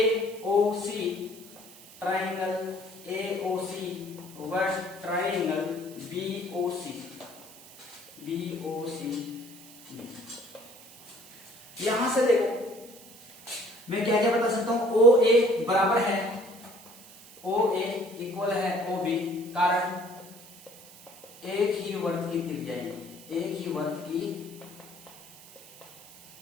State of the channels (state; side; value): noise; right; hiss, 20 dB below the sound